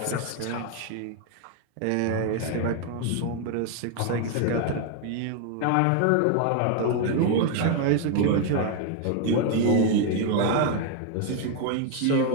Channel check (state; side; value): different; both; correlation 0.00